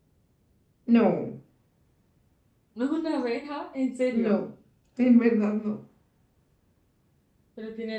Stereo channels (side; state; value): both; identical; correlation 1.00